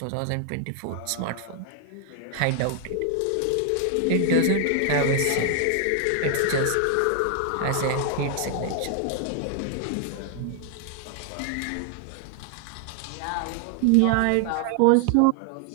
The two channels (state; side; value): different; both; correlation 0.00